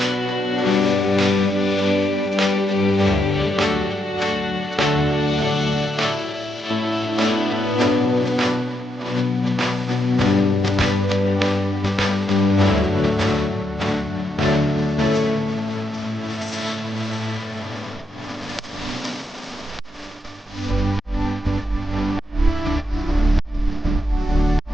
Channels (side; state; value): both; normal; correlation 0.81